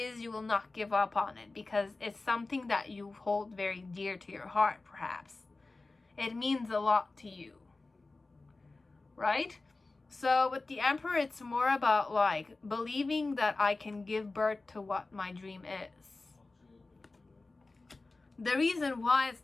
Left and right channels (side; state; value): right; quieter; 3.4 dB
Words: you will not give up on it because it's something that you hold very dear to your heart, perhaps. It means a lot to you. Right? So with the Emperor, it's more about like believing that I can give birth to what my dream is. The reason why it's